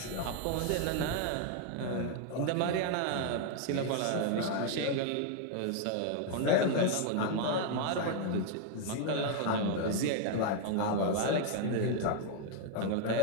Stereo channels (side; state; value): both; different; correlation 0.00